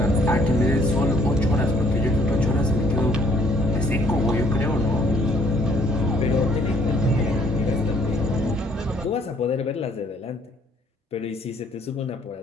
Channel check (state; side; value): normal; both; correlation 0.64